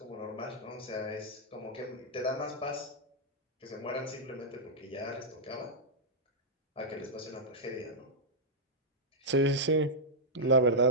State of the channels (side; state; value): both; normal; correlation -0.07